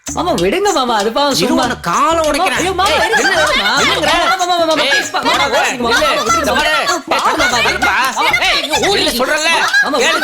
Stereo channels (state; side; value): identical; both; correlation 1.00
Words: மாமா விடுங்க மாமா, அது பாவம். சும்மா காலம் உடைக்கிறேன். ஐயோ மாமா,